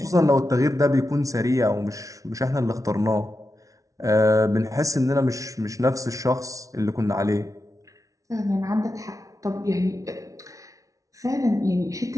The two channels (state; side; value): late; left; 0.17 ms